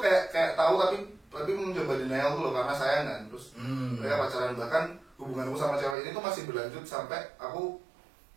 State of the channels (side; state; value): left; drops out; at 6.0 s